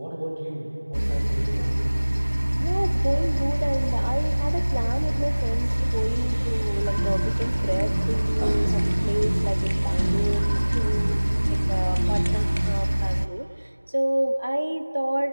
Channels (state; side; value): inverted; both; correlation -1.00